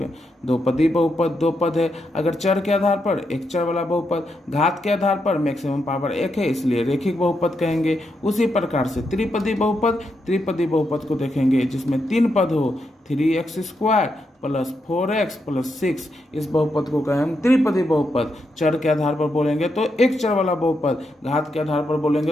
2 पदी बहुपद, 2 पद है। अगर चर के आधार पर एक चर वाला बहुपद, घात के आधार पर मैक्सिमम पावर 1 है, इसलिए रेखिक बहुपद कहेंगे। उसी प्रकार से त्रिपदी बहुपद, त्रिपदी बहुपद को देखेंगे जिसमें 3 पद हो, 3x² प्लस 4x प्लस 6। इस बहुपद को कहें हम त्रिपदी बहुपद। चर के आधार पर बोलेंगे तो एक चर वाला बहुपद, घात के आधार पर बोलेंगे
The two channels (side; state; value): both; normal; correlation 0.83